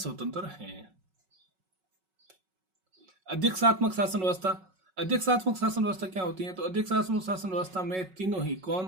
है। अध्यक्षात्मक शासन व्यवस्था। अध्यक्षात्मक शासन व्यवस्था क्या होती है? तो अध्यक्षात्मक शासन व्यवस्था में तीनों ही कौन?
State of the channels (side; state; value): left; late; 5.4 ms